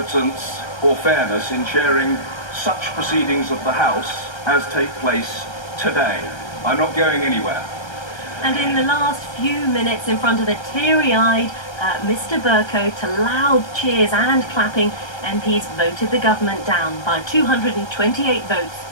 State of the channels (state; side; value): late; right; 1.3 ms